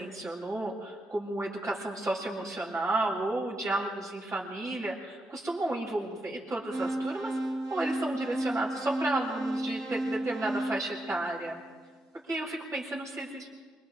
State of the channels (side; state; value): both; normal; correlation 0.84